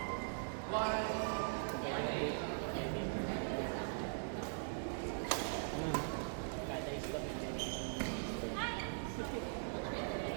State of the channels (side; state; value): left; silent; 50 dB below the other